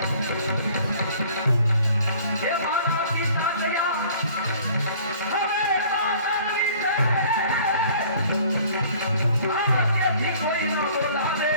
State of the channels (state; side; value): inverted; both; correlation -0.52